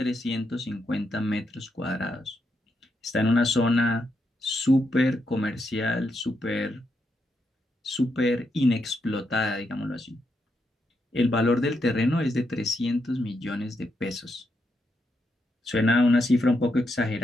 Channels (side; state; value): both; normal; correlation 0.81